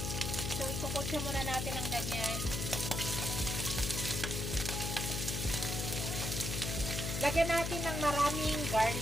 So, ikukutsa muna natin ng ganyan. Lagyan natin ng maraming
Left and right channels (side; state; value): left; noise; hum, 2 dB below the sound